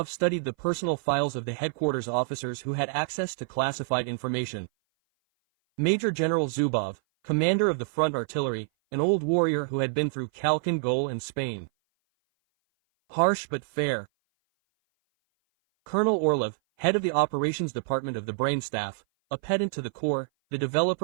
studied the personal files of the headquarters officers who had access to classified information. Major General Zubov, commander of the front artillery, an old warrior who had been through Khalkhin Gol and Spain. Harsh but fair. Colonel Orlov, head of the operations department of the brain staff, a pedant to the core, the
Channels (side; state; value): left; silent; 57 dB below the other